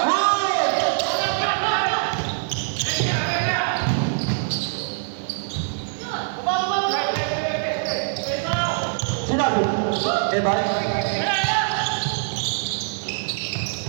Oy! Sinabi? Bye.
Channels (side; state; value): left; silent; digital silence